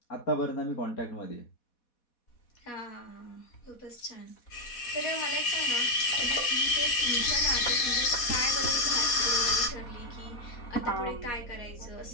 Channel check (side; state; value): right; late; 4.1 ms